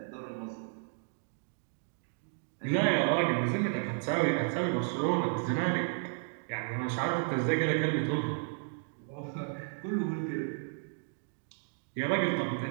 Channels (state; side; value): silent; left; 56 dB below the other